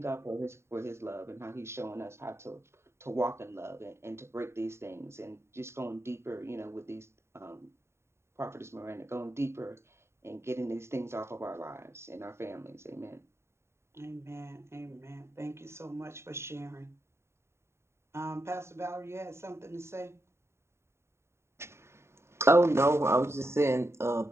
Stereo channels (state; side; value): late; left; 0.13 ms